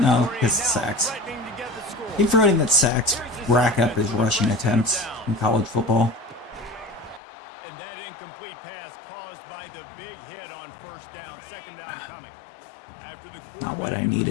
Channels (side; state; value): right; drops out; at 7.2 s